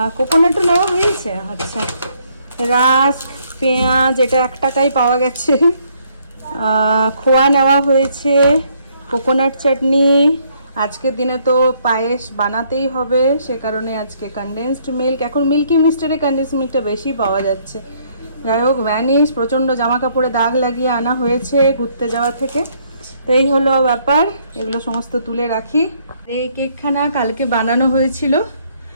কোকোনাটও নেওয়া হয়েছে। আচ্ছা, রাস্ক, পেঁয়াজ, এটা 1 টাকায় পাওয়া গেছে। খোয়া নেওয়া হয়েছে, কোকোনাট চাটনি। আজকের দিনে তো পায়েস বানাতেই হবে, সে কারণে আজকে কনডেন্সড মিল্ক। এখন মিল্কি মিস্টারে কনডেন্সড মিল্কটা বেশি পাওয়া যাচ্ছে। যাই হোক, ভ্যানিশ, প্রচণ্ড জামা কাপড়ে দাগ লাগিয়ে আনা হয়েছে ঘুরতে যাওয়া থেকে। তো এই হলো ব্যাপার, এগুলো সমস্ত তুলে রাখি। এই কেকখানা কালকে বানানো হয়েছিল,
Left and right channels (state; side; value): inverted; both; correlation -0.68